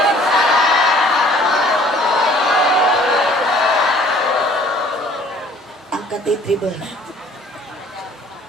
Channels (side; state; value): both; normal; correlation 0.55